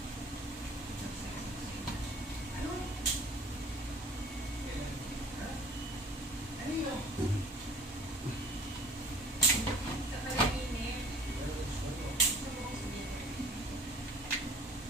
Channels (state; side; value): normal; both; correlation 0.49